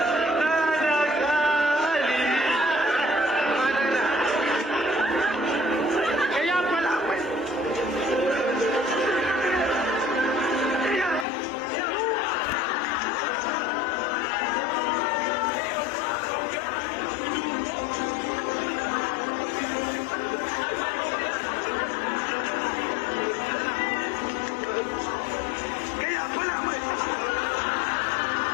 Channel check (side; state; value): right; drops out; at 11.2 s